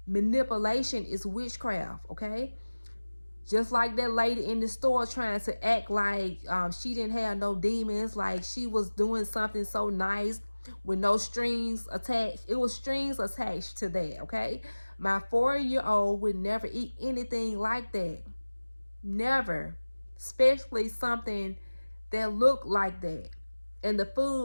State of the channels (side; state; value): both; inverted; correlation -1.00